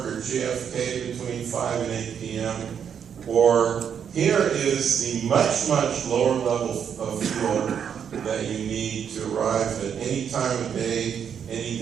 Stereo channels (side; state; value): left; quieter; 7.9 dB